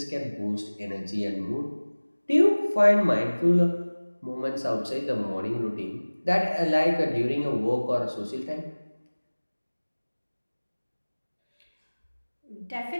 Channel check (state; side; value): inverted; both; correlation -1.00